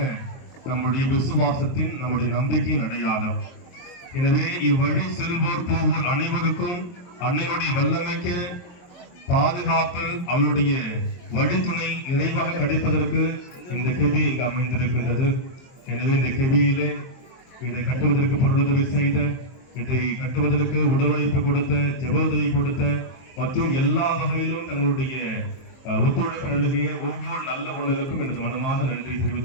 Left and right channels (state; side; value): late; right; 23 ms